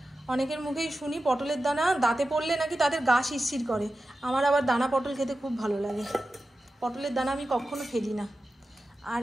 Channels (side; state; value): both; normal; correlation 0.93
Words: অনেকের মুখেই শুনি পটলের দানা দাঁতে পড়লে নাকি তাদের গা শিরশির করে, আমার আবার দানা পটল খেতে খুব ভালো লাগে। পটলের দানা আমি কখনো ফেলি না। আর